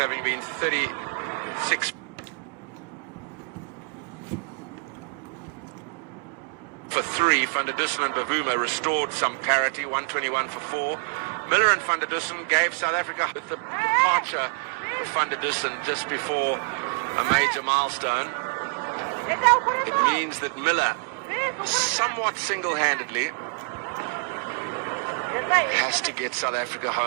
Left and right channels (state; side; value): quieter; left; 35.9 dB